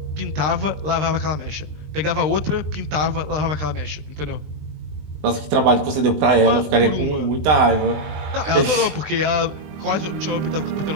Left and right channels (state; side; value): late; left; 20 ms